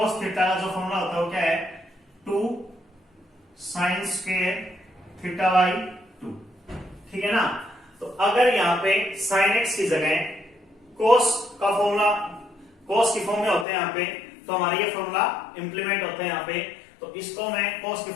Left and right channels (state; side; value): drops out; right; at 13.7 s